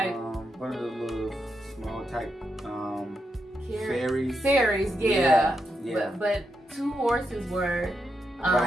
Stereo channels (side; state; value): both; normal; correlation 0.84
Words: One of the little small type ferries. Ferries, yeah. But two horses were.